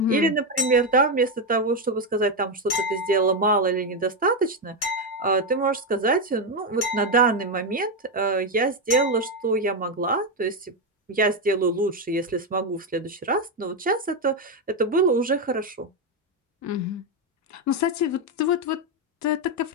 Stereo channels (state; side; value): normal; both; correlation 0.06